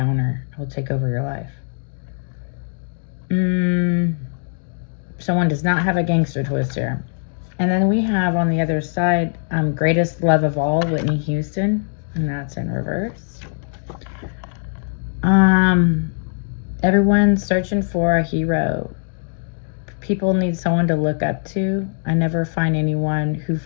It will take over your life. Someone does not have a gangster twist here. And then we have on the other side, greatest love of all, Whitney Houston, and that's in reverse. Everyone's searching for a hero. People need someone to look up to. I never find anyone who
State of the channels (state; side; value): silent; right; digital silence